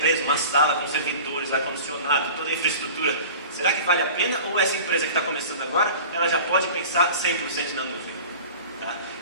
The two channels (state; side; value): inverted; both; correlation -0.39